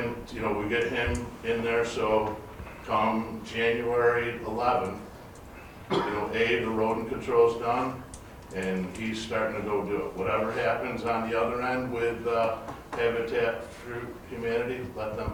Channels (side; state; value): both; identical; correlation 1.00